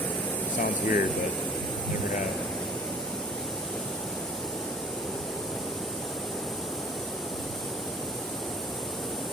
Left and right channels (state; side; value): normal; both; correlation 0.50